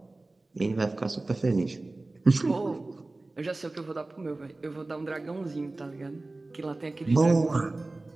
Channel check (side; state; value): left; quieter; 3.0 dB